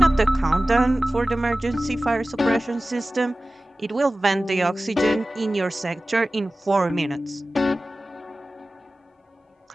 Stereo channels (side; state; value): both; normal; correlation 0.97